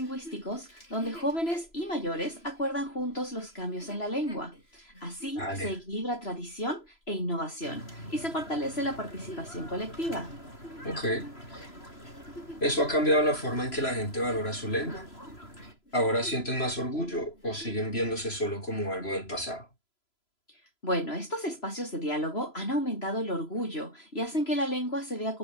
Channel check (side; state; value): right; late; 3.0 ms